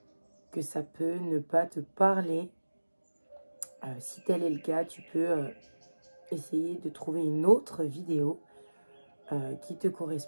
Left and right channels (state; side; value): inverted; both; correlation -1.00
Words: que ça peut ne pas te parler. Si tel est le cas, tu peux essayer de trouver une autre vidéo qui te